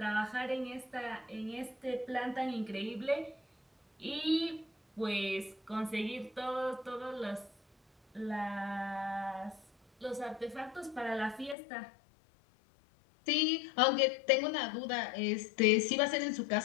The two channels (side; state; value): right; drops out; at 11.6 s